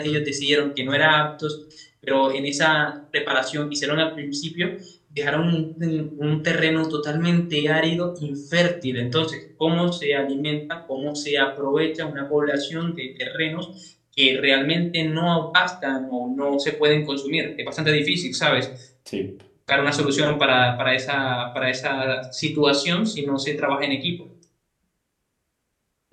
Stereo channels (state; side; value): identical; both; correlation 1.00